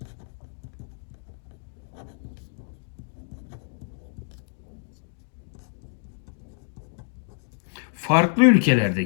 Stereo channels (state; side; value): silent; right; digital silence